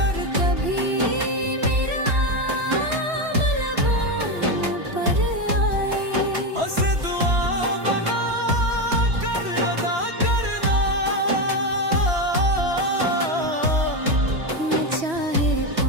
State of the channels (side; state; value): left; late; 3.1 ms